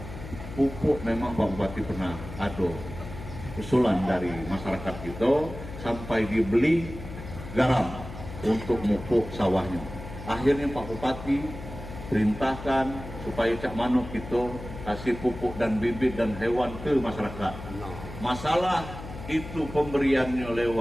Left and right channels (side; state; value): left; noise; hum, 12 dB below the sound